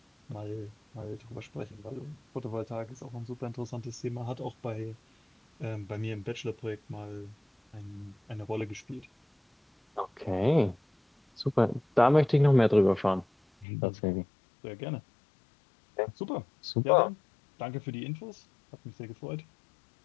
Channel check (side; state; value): right; drops out; at 13.7 s